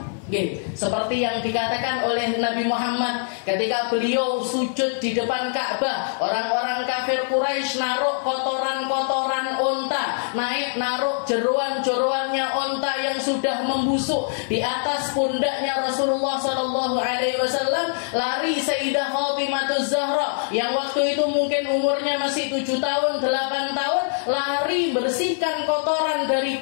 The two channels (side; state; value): right; silent; digital silence